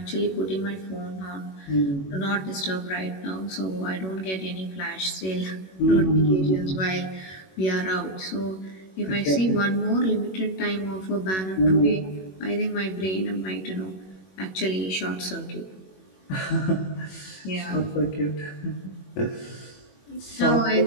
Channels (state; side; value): late; right; 21 ms